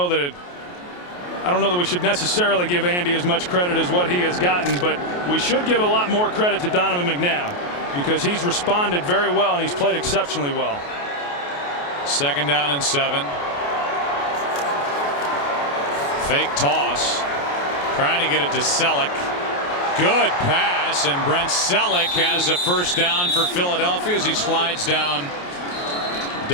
that we should necessarily give Andy as much credit as what he has gotten, but we should give a lot more credit to Donovan McNabb because he's responded very well and he's played exceptionally well. 2nd down and 7. Fake toss, trying to get it to Selleck. Good pass, and Brent Selleck has a first down for Philadelphia as he slides down.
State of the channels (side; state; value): right; late; 28 ms